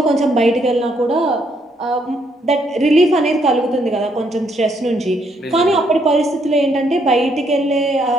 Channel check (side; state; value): both; normal; correlation 0.72